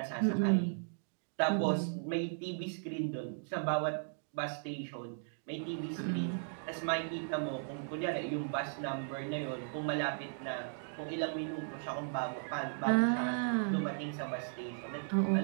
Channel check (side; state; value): left; silent; digital silence